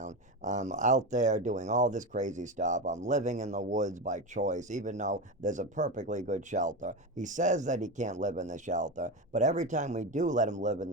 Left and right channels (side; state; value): both; normal; correlation 0.18